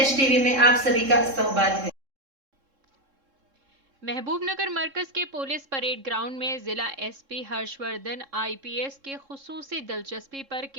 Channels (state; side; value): late; left; 3.7 ms